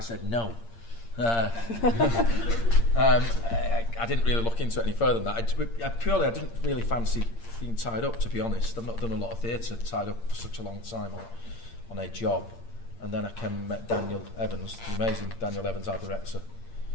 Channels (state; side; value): late; right; 8.7 ms